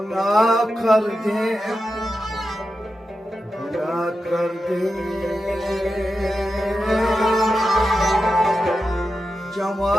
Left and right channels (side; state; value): both; normal; correlation 0.90